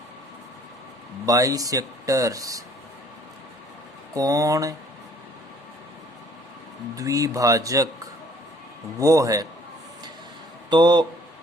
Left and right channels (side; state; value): both; normal; correlation 0.58